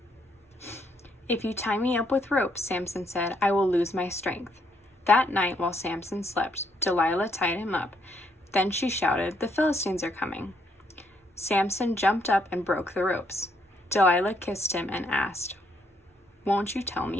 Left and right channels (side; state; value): both; normal; correlation 0.72